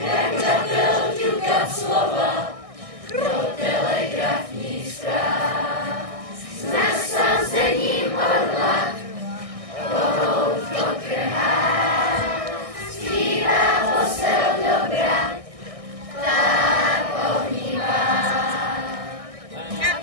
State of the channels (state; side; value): late; left; 1.6 ms